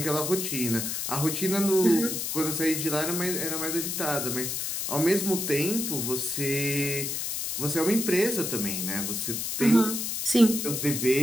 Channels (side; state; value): left; noise; hiss, 2 dB below the sound